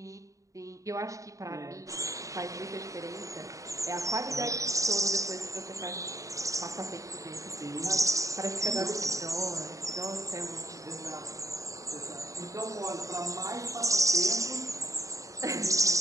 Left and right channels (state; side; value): late; left; 0.16 ms